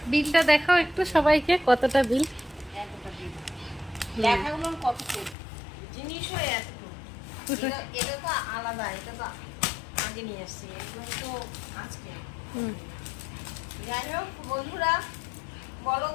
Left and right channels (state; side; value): drops out; right; at 5.4 s